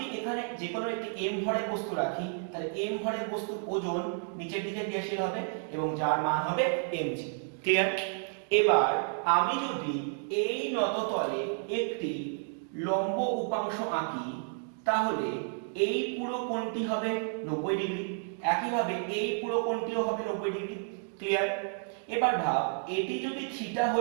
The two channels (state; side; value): silent; left; 57 dB below the other